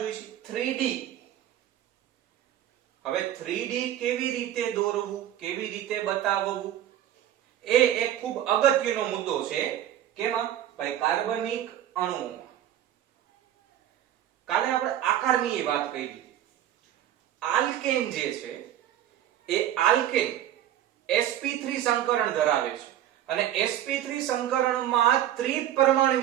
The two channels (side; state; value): left; quieter; 11.7 dB